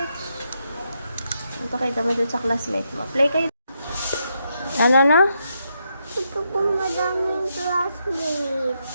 Ito kita mo dun sa classmate mo. Play kayo. Ano na? Ito po madaming classmate.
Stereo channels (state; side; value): inverted; both; correlation -0.81